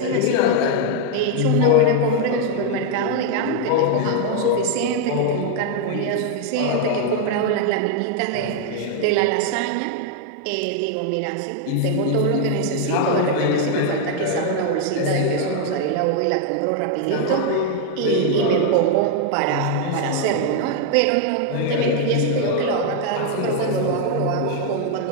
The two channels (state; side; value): different; both; correlation 0.00